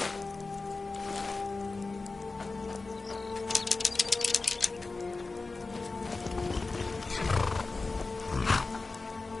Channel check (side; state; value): right; quieter; 3.7 dB